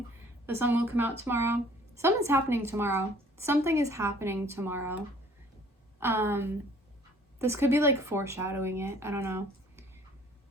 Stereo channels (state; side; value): normal; both; correlation 0.55